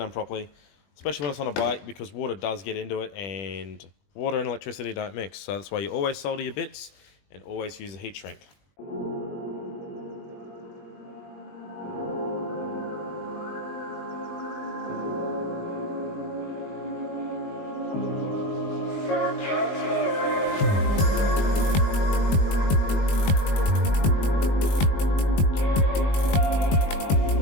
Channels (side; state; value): right; late; 20 ms